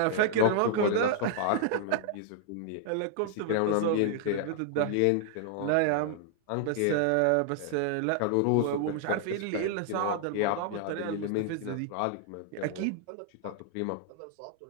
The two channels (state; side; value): different; both; correlation -0.01